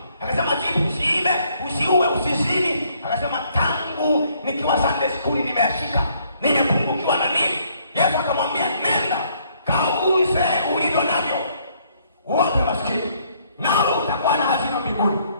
Akasema, jibu, usiibe, usiue, usizini. Akasema, tangu nikiwa Sunday school nimeashika. Nimepungukiwa na nini? Yesu akamwambia, nenda kauze ulivyo navyo, uwape maskini, nawe utakuwa na hazina mbinguni,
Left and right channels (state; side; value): inverted; both; correlation -0.67